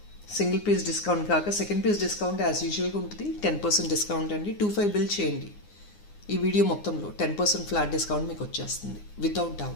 single piece discount కాక సెకండ్ పీస్ డిస్కౌంట్ యాజ్ యూజువల్గా ఉంటుంది. 10% డిస్కౌంట్ అండి. 25 బిల్ చేయండి. ఈ వీడియో మొత్తంలో 10% ఫ్లాట్ డిస్కౌంట్ మీకు వచ్చేస్తుంది without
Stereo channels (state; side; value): late; right; 9.7 ms